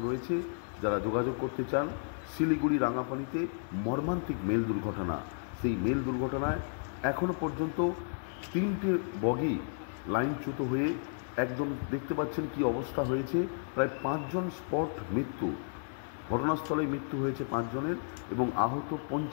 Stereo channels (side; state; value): right; silent; 56 dB below the other